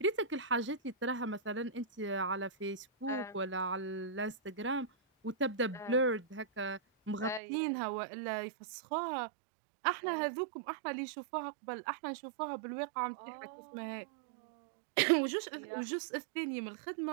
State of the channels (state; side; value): drops out; left; at 7.4 s